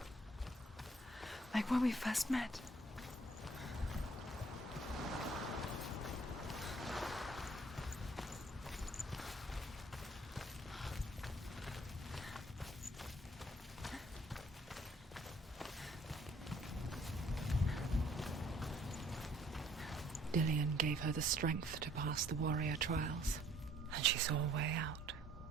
Like when we first met. Dillion gave her the strength to pass the warrior trials, and she saw a way out.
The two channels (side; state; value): both; normal; correlation 0.60